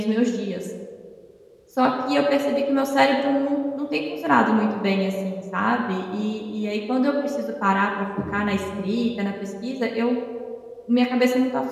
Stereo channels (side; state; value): both; identical; correlation 1.00